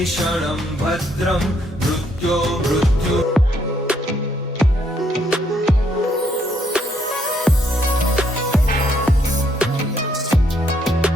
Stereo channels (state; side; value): normal; both; correlation 0.71